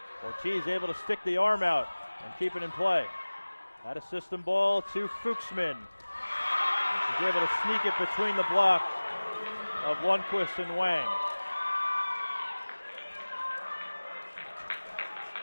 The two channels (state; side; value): inverted; both; correlation -1.00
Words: Ortiz able to stick the arm out and keep it in play. Out of system ball to Fuchsman. And she's able to sneak it between the block of Lundquist and Wang.